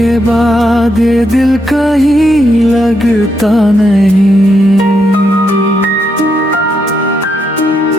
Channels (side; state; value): both; normal; correlation 0.79